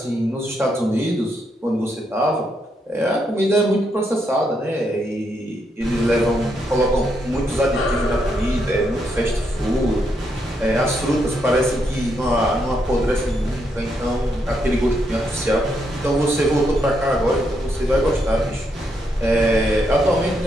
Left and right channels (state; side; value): normal; both; correlation 0.78